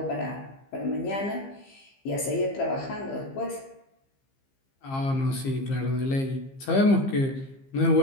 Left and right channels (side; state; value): right; late; 15 ms